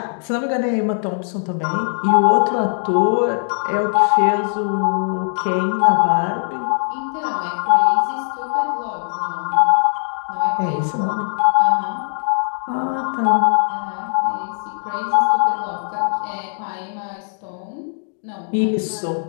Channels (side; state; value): right; silent; 61 dB below the other